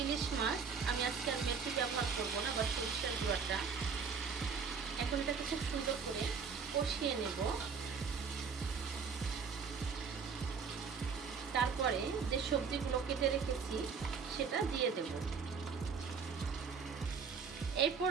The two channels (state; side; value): quieter; left; 5.8 dB